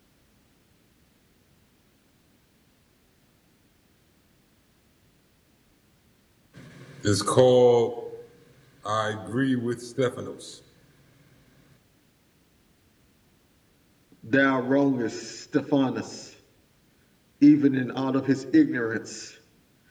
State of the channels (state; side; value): identical; both; correlation 1.00